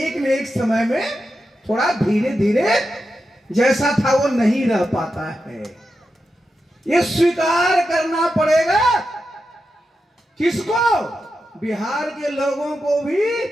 न एक समय में थोड़ा धीरे धीरे जैसा था वो नहीं रह पाता है। ये स्वीकार करना पड़ेगा। किसको? बिहार के लोगों को भी,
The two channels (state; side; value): normal; both; correlation 0.89